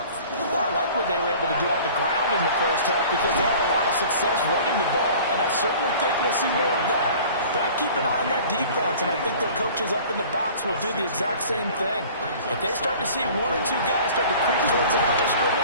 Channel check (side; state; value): both; inverted; correlation -0.46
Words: Well, I like what they were able to do on the ground in the first half because they had a lot of success running the ball, and I certainly think we'll see more of that. But I keep an eye on that defense, and I think their coaches up in the box will do the exact same thing. If they start to see one or two guys start to creep towards the line of